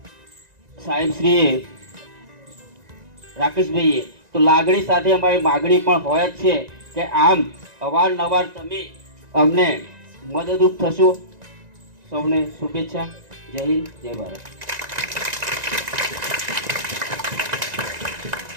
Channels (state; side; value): late; left; 1.9 ms